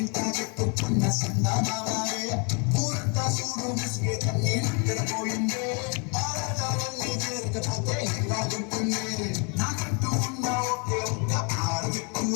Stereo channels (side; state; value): right; quieter; 34.8 dB